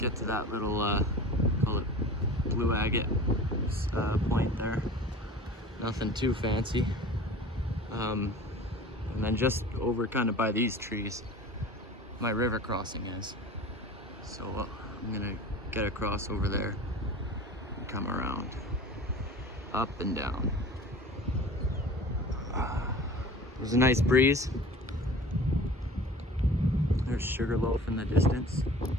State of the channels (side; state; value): both; normal; correlation 0.40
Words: to that little, call it blue agate point there. Nothing too fancy. And then just over kind of by these trees, my river crossing is. So I'm gonna get across over there and come around, up and down. There's a nice breeze. There's Sugarloaf in the distance.